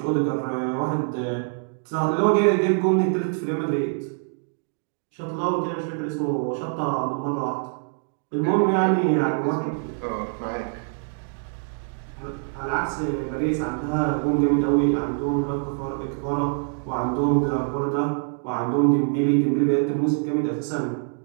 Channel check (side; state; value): left; silent; 55 dB below the other